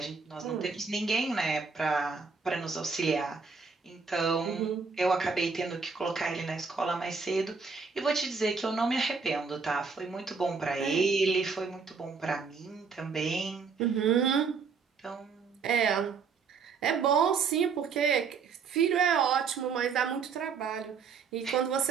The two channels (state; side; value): quieter; left; 5.3 dB